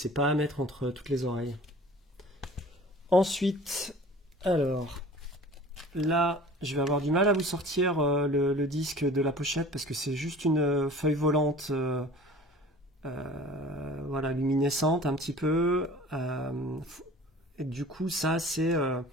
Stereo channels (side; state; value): both; normal; correlation 0.44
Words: pas à mettre entre toutes les oreilles. Ensuite, alors, là, je vais avoir du mal à vous sortir le disque de la pochette parce que c'est juste une feuille volante, voilà, luminescente un petit peu. Et du coup, ça, c'est